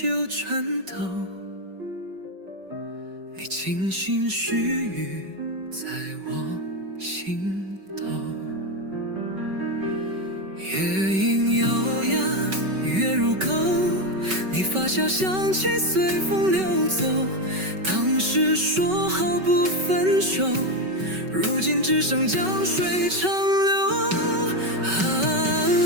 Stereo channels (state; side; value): late; left; 5.3 ms